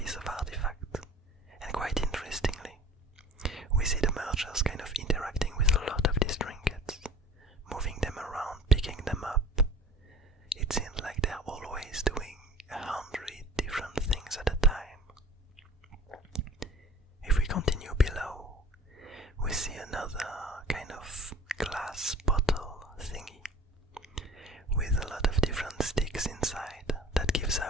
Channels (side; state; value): both; normal; correlation 0.44